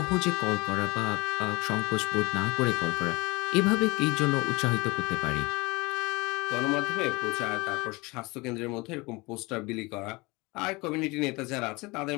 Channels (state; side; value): quieter; right; 24.4 dB